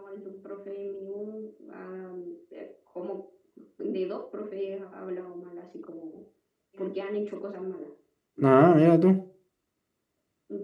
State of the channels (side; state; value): both; identical; correlation 1.00